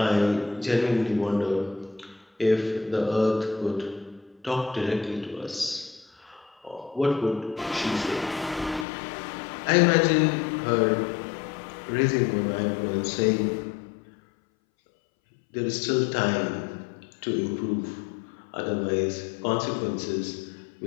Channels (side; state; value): right; drops out; at 8.8 s